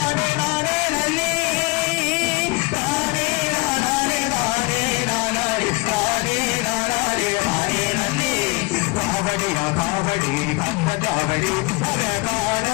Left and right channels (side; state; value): right; quieter; 25.7 dB